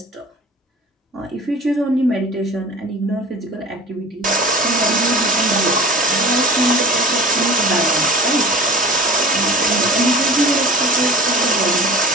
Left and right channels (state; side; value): normal; both; correlation 0.41